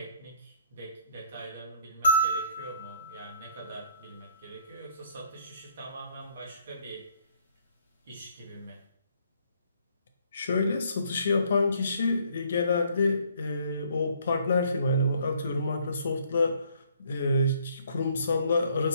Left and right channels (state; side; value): inverted; both; correlation -0.65